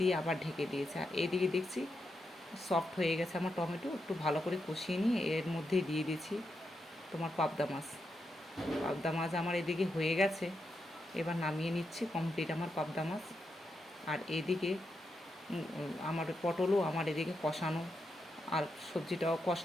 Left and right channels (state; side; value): normal; both; correlation 0.84